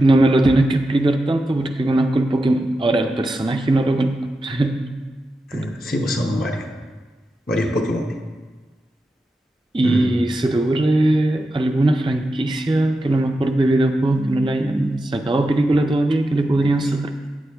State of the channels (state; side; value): normal; both; correlation 0.89